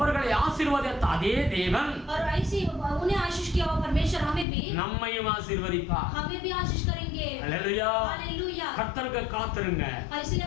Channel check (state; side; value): drops out; right; at 4.5 s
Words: ஆசீர்வதித்த அதே தேவன் और ऐसे उन्हें आशीष किया हुआ परमेश्वर हमें भी நம்மையும் ஆசீர்வதிப்பார். हमें भी आशीष करेंगे। அல்லேலூயா. हालेलुया। கர்த்தருக்கு காத்திருங்க. इसलिए